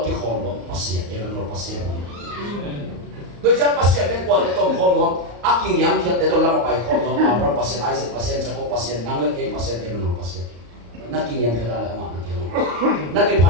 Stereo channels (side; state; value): left; late; 34 ms